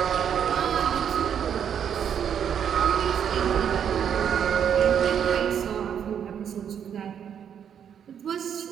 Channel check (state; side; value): quieter; left; 8.4 dB